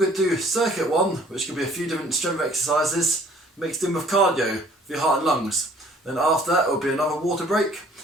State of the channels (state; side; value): normal; both; correlation 0.55